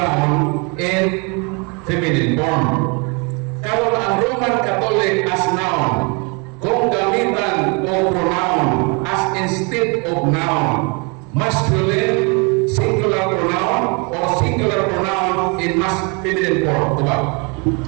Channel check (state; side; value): quieter; left; 32.0 dB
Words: in feminine form. Karon ang Roman Catholic as noun, kung gamitan o pronoun as instead of noun, masculine singular pronoun or singular pronoun in feminine form. Diba?